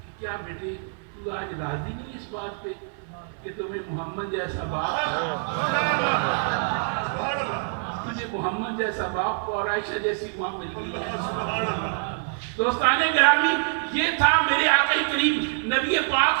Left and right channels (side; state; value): left; silent; 61 dB below the other